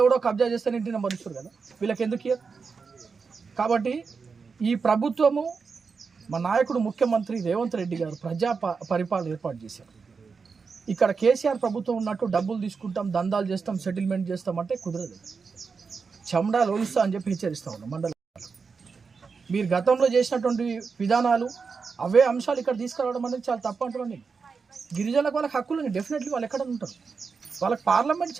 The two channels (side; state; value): left; quieter; 5.2 dB